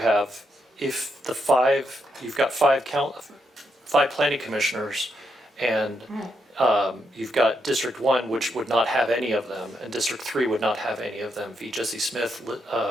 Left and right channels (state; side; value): normal; both; correlation 0.80